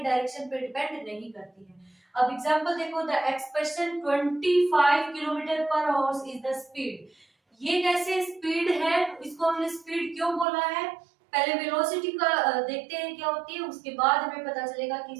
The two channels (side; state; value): left; drops out; at 10.5 s